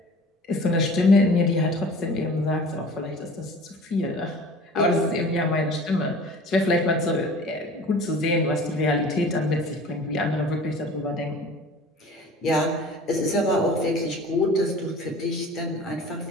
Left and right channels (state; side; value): normal; both; correlation 0.44